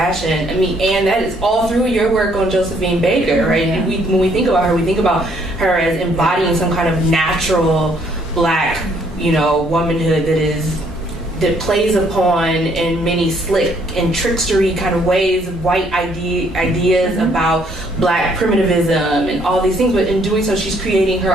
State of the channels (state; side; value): normal; both; correlation 0.66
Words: and that is all through your work on Josephine Baker, right? Yeah. When we think about her, we think about her as embodying some kind of natural Black, womanhood that plays upon in many slick and trickstery kind of ways white ideas about Black primitivism and all these things, but in doing so she's creating her